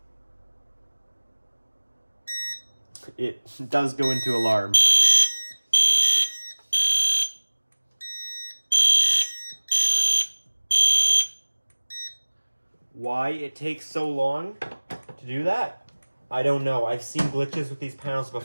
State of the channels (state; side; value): inverted; both; correlation -1.00